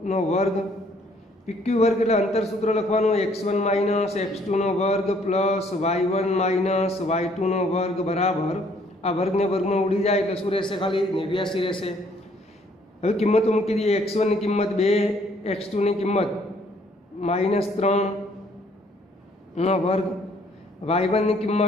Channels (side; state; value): both; normal; correlation 0.63